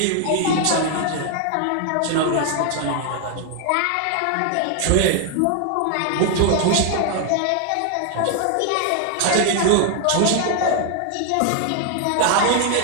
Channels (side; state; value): both; different; correlation 0.00